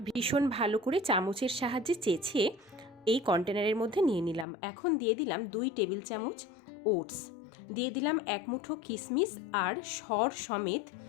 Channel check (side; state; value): right; drops out; at 4.5 s